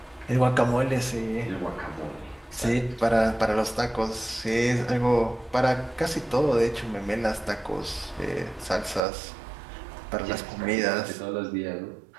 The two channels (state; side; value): drops out; left; at 9.1 s